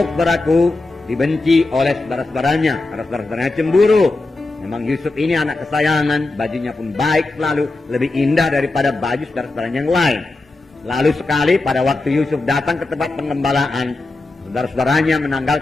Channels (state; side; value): quieter; right; 3.1 dB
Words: saudaraku, dibenci oleh saudara-saudaranya karena saudara-saudaranya cemburu. Memang Yusuf ini anak kesayangan, bajunya pun baik selalu, lebih indah daripada baju saudara-saudaranya yang lain. Lalu sekali pada waktu Yusuf datang ke tempat pengembalaan, saudara-saudaranya